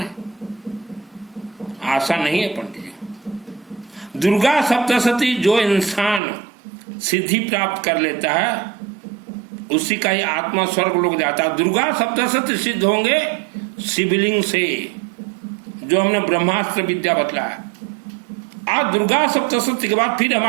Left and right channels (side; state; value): left; drops out; at 6.2 s